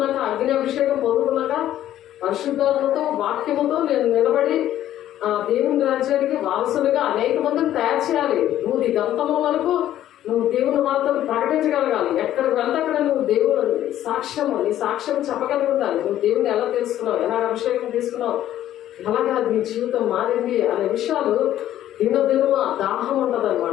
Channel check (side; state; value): right; quieter; 12.3 dB